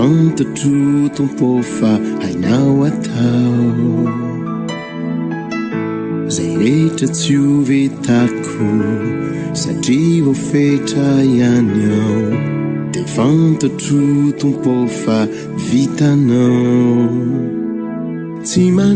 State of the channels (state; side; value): identical; both; correlation 1.00